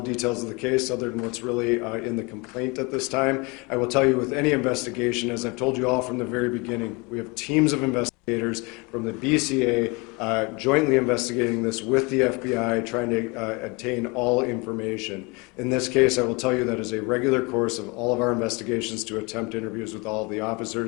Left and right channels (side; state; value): right; quieter; 28.0 dB